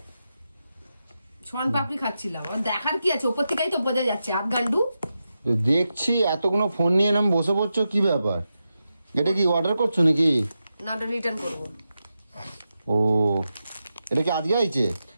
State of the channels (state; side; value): inverted; both; correlation -0.89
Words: শন পাপড়ি খাচ্ছিলাম। আর দেখার কি আছে, উপর থেকেই তো বোঝা যাচ্ছে আধগান্ডু। দেখছি এতগুলো ফোন নিয়ে নাম বসে পড়ছো, কি ব্যাপার? এটা কি অর্ডার করছো নাকি? না, ওটা রিটার্ন করবো। ও, এটা কি আজকে আইছে?